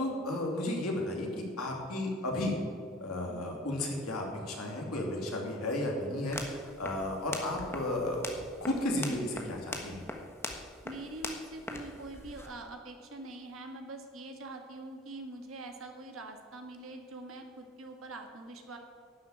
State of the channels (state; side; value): normal; both; correlation 0.43